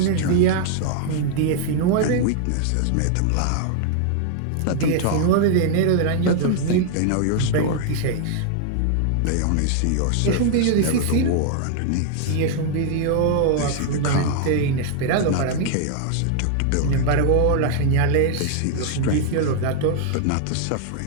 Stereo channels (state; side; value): different; both; correlation 0.00